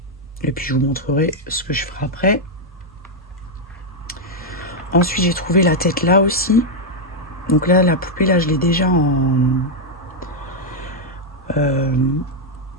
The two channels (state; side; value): normal; both; correlation -0.01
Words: et puis je vous montrerai ce que je ferai après. Ensuite j'ai trouvé la tête là aussi. Donc là la poupée là je l'ai déjà en